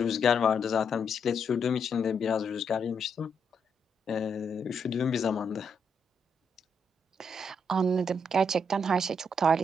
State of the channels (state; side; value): normal; both; correlation 0.77